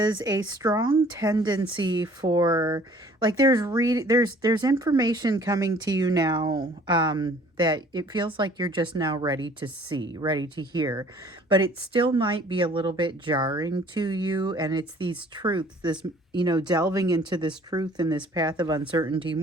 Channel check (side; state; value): both; normal; correlation 0.54